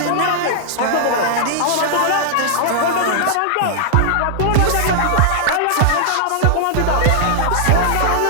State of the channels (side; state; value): both; different; correlation -0.01